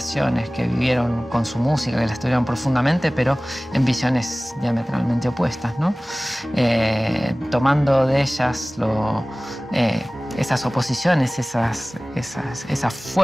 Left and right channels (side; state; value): both; normal; correlation 0.98